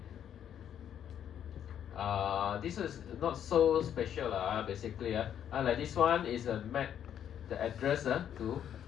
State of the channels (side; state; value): right; quieter; 9.6 dB